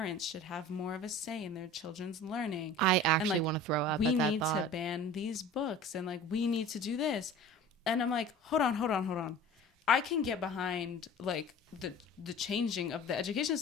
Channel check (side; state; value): both; normal; correlation 0.40